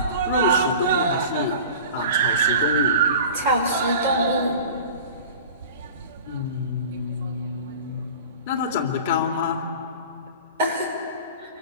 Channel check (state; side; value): inverted; both; correlation -0.38